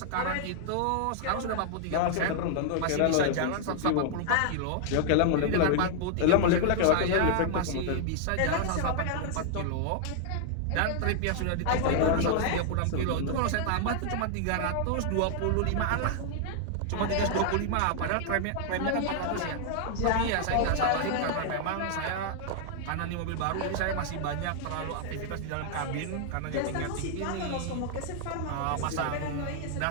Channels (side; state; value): both; different; correlation -0.01